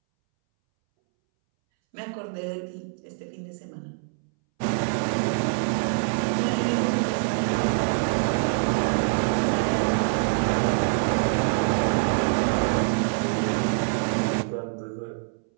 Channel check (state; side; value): silent; left; 62 dB below the other